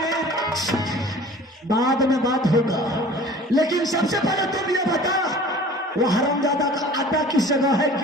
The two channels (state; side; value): normal; both; correlation 0.45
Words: बाद में बात होगा, लेकिन सबसे पहले तुम ये बता वो हरामजादा का अड्डा किस जगह है,